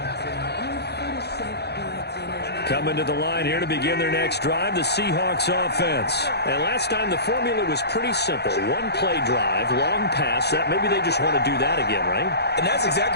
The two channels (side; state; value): right; late; 0.48 ms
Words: Coming to the line here to begin their next drive, the Seahawks offense. And last time the formula was pretty simple. 1-play drive, long pass. That maybe they just want to do that again, right? And that's